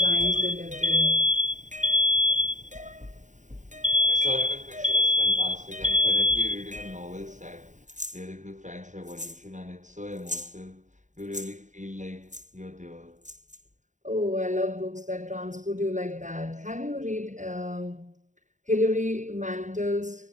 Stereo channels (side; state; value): left; late; 0.36 ms